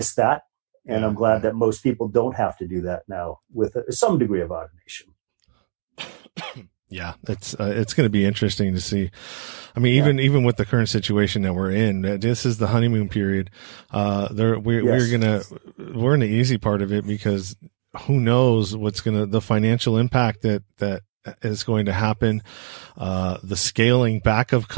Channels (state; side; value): silent; left; digital silence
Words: that. And I'm glad that most people don't have to do that now with some degree of automation. Yeah, it's going to be interesting to see. I mean, even with the current situation that we're in, this is the honeymoon period. We're in the easy part of it, because who knows the financial impact that is going to happen, the scaling back of